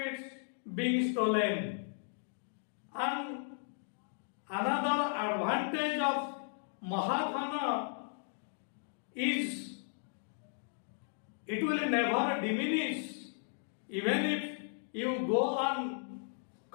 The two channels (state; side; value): silent; right; digital silence